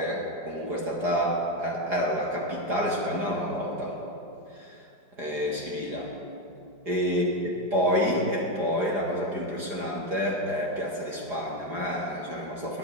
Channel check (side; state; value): left; late; 4.9 ms